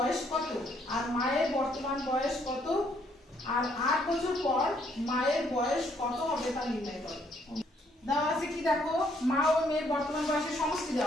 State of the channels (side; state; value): both; normal; correlation 0.69